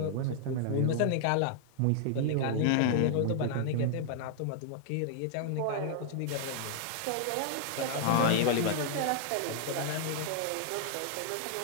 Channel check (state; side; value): different; both; correlation -0.01